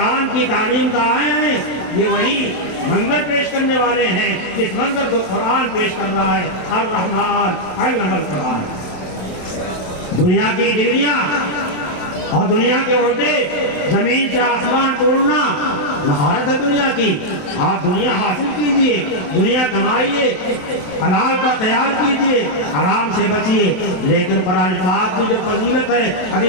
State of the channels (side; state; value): right; late; 27 ms